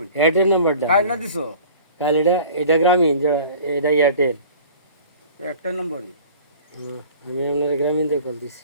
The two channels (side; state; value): both; inverted; correlation -0.45